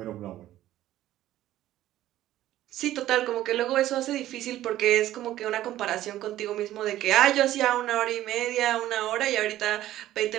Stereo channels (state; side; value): quieter; left; 13.8 dB